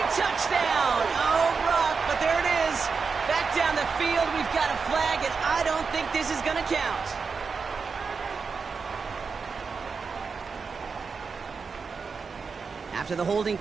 touchdown. Oh, rough, but there it is. Back down the field, we've got a flag, and I don't think this is going to count. After the holding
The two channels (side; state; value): left; quieter; 5.2 dB